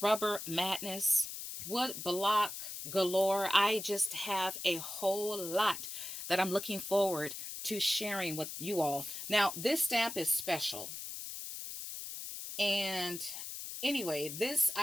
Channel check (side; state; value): left; noise; hiss, 8 dB below the sound